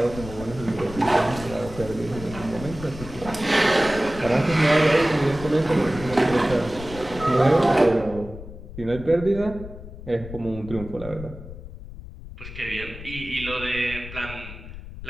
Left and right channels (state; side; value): noise; left; rumble, 13 dB below the sound